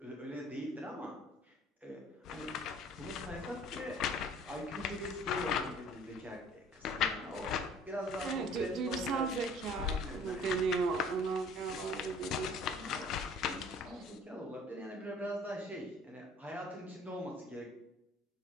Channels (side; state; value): both; normal; correlation 0.51